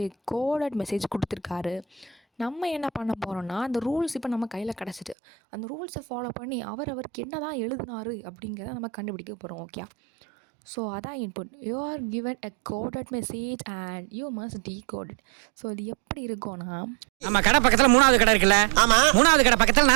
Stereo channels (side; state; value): left; drops out; at 5.2 s